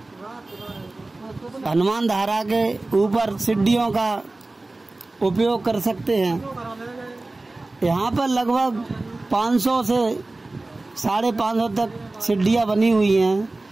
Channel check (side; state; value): left; quieter; 3.0 dB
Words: हनुमान धारा के ऊपर सीढ़ियों का उपयोग कर सकते हैं। यहाँ पर लगभग 500 से 550 तक सीढ़ियाँ बनी हुई